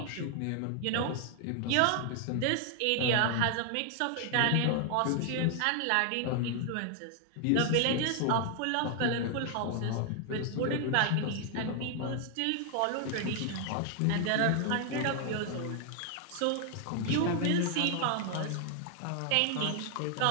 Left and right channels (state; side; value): different; both; correlation 0.00